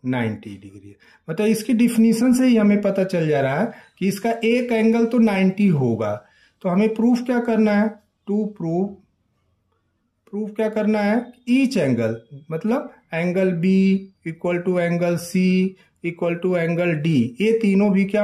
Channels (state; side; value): identical; both; correlation 1.00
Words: 90 डिग्री। मतलब इसकी डिफिनीशन से ही हमें पता चल जा रहा है कि इसका एक एंगल तो 90 होगा। तो हमें प्रूफ क्या करना है, टू प्रूफ क्या करना है, ईच एंगल, मतलब angle B equal to angle C equal to angle D, ये तीनों भी